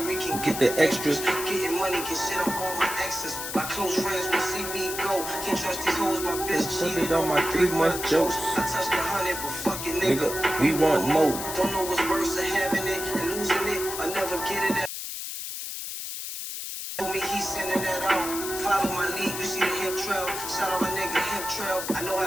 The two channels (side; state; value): left; noise; hiss, 6 dB below the sound